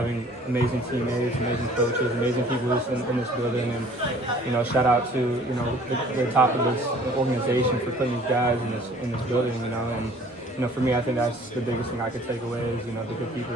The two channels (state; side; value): normal; both; correlation 0.53